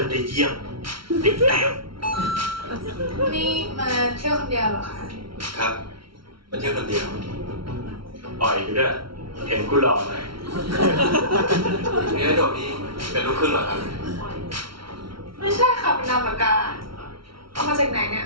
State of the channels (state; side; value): late; left; 0.74 ms